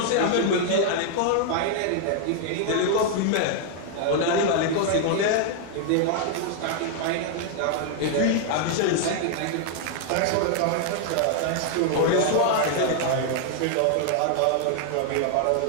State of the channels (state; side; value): different; both; correlation 0.00